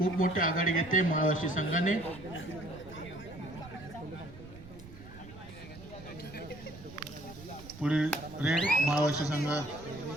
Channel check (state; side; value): noise; right; rumble, 17 dB below the sound